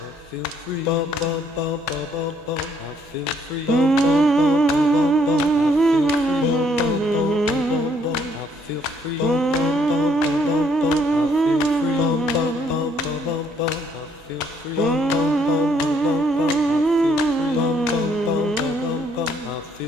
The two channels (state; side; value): normal; both; correlation 0.67